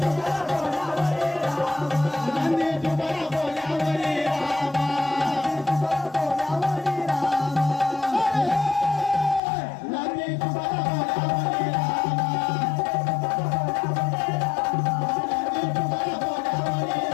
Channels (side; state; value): right; drops out; at 9.4 s